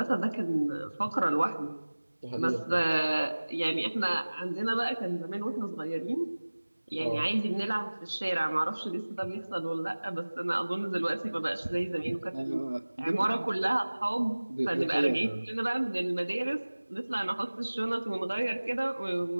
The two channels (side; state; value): both; inverted; correlation -1.00